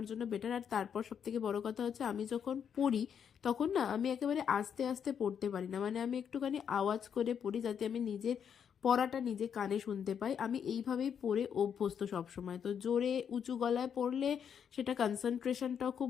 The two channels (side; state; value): right; quieter; 7.8 dB